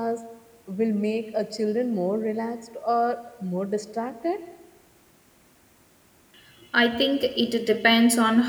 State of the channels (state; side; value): identical; both; correlation 1.00